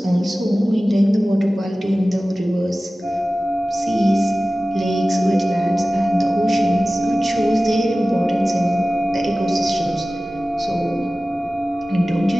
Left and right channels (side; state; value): both; normal; correlation 0.96